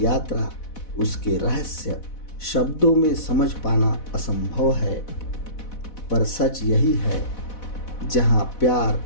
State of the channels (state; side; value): late; right; 4.1 ms